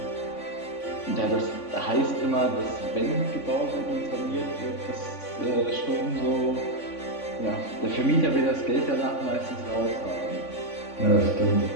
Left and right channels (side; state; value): right; late; 3.5 ms